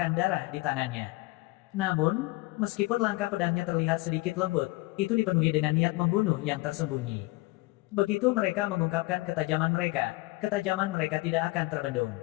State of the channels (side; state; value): right; quieter; 22.0 dB